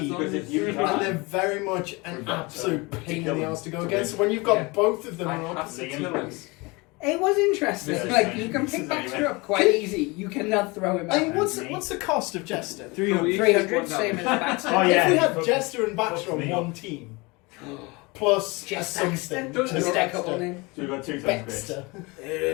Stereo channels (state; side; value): quieter; right; 25.7 dB